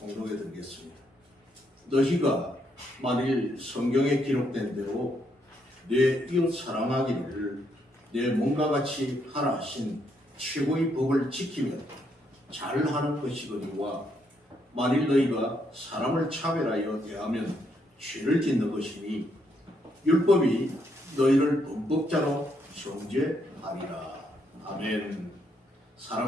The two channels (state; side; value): normal; both; correlation 0.75